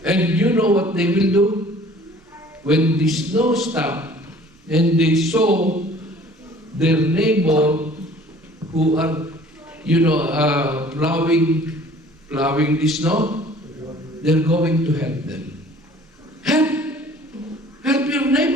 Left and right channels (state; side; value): normal; both; correlation 0.51